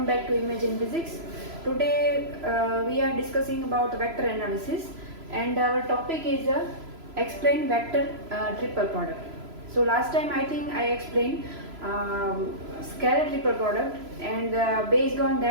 back to Imagine Physics. Today we are discussing about vector analysis and our topic is explain vector triple product. So last time I think I explained scalar triple product and based on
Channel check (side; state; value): left; late; 3.0 ms